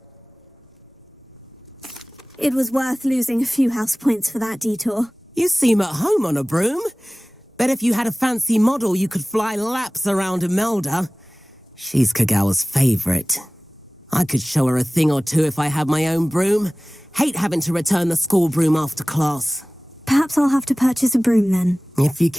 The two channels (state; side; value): normal; both; correlation 0.98